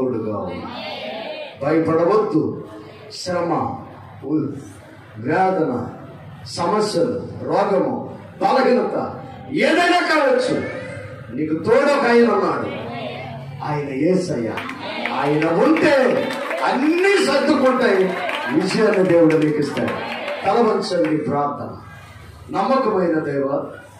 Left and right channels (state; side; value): identical; both; correlation 1.00